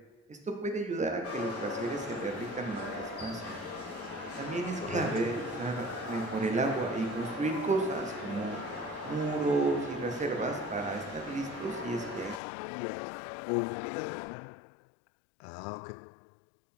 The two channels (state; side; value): drops out; right; at 12.4 s